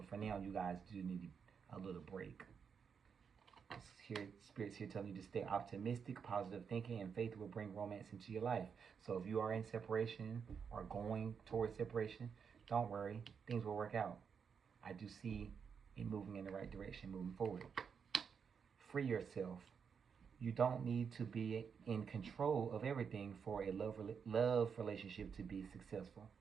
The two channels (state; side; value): quieter; left; 6.6 dB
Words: for now, you guys do need a little break. Spirits here telling you to stay optimistic. Positive thinking and faith will bring romance into your life. So if you are in separation or going towards separation, don't worry. Things will work out. I do see it moving in the right direction, moving forward. Free yourself. You don't need to be in control of everything for a love relationship to be successful.